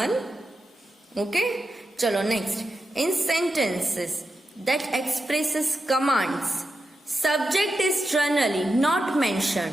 Okay? चलो next. In sentences that expresses commands, subject is generally not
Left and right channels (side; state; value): both; normal; correlation 0.88